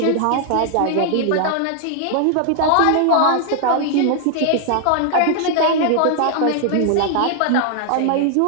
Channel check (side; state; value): both; different; correlation 0.00